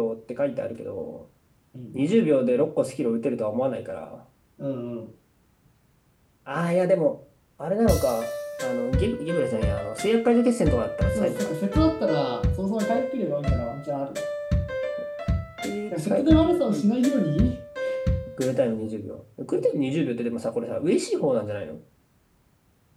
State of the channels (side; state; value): both; identical; correlation 1.00